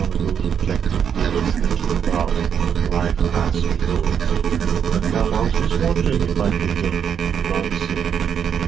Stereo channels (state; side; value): quieter; left; 7.9 dB